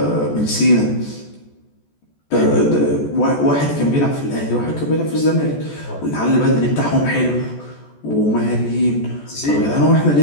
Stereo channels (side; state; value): right; late; 14 ms